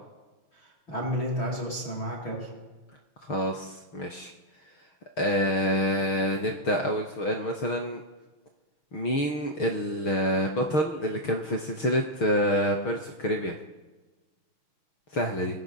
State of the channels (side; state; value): right; late; 6.4 ms